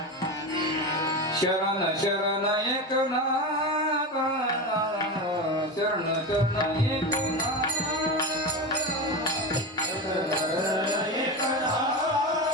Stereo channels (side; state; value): both; normal; correlation 0.21